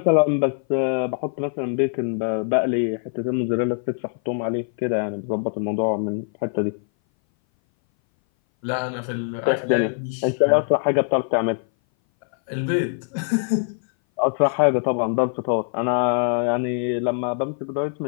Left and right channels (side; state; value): right; silent; 59 dB below the other